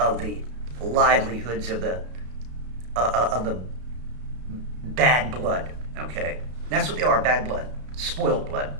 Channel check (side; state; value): left; late; 33 ms